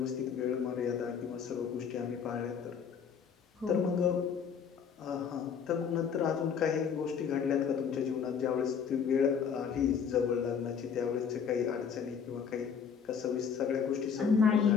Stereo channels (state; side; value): quieter; right; 6.9 dB